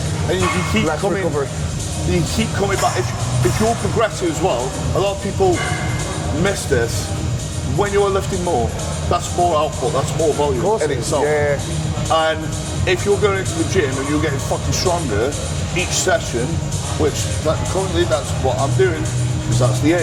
And you can keep less coming, recovery. you keep coming back. If you're progressive as well, a lot of people miss this. When you're lifting more, that's more output, that's more volume in itself. Yeah. And if you're going into the gym and you're getting fucking stronger each session, which currently that's what I'm doing, because that's the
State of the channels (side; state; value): both; identical; correlation 1.00